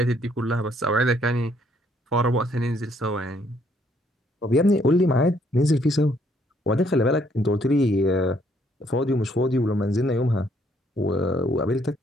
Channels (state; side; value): normal; both; correlation 0.68